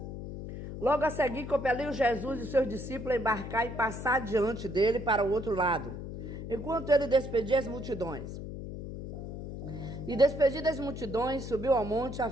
Logo a seguir, compeliu Jesus e seus discípulos a embarcar e passar diante dele para o outro lado, enquanto ele despedia as multidões. E despedidas as multidões, subiu ao monte a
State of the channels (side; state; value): left; noise; hum, 8 dB below the sound